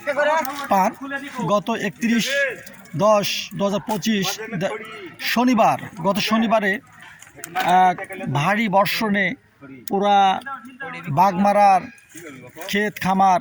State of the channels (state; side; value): identical; both; correlation 1.00